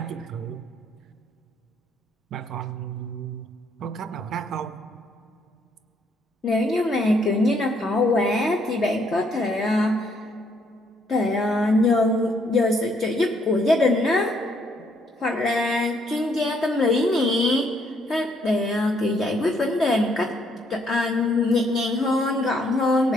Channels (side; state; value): both; normal; correlation 0.69